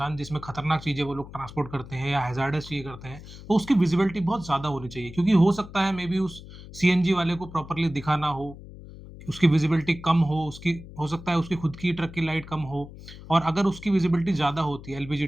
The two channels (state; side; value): noise; left; hum, 16 dB below the sound